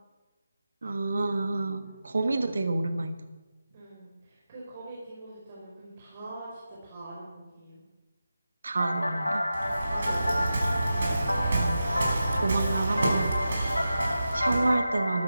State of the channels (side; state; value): both; inverted; correlation -0.92